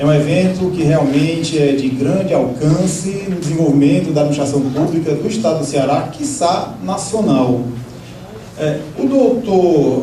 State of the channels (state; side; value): identical; both; correlation 1.00